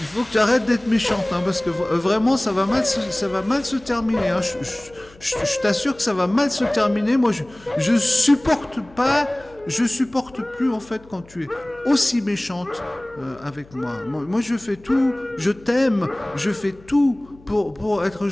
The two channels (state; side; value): noise; left; hum, 25 dB below the sound